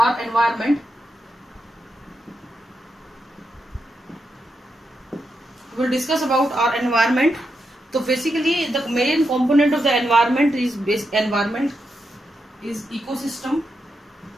environment. We will discuss about our environment. So basically the main component of the environment is ecosystem.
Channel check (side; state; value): both; normal; correlation 0.85